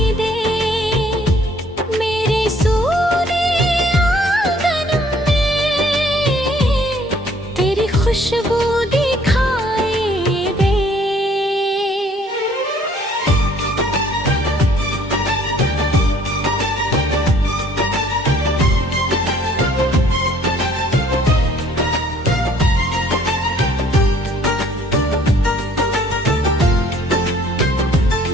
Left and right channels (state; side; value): normal; both; correlation 0.59